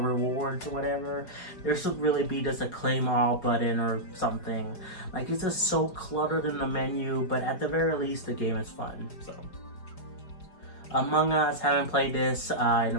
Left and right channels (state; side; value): late; right; 4.9 ms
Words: or whatever. There should really be just a claim all button or something. Like it's just so cluttered in the menu, but at the very least the game is fun. So Among Us, haven't played this in